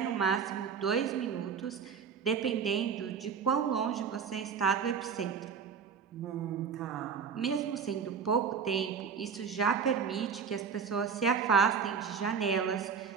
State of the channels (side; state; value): left; quieter; 6.5 dB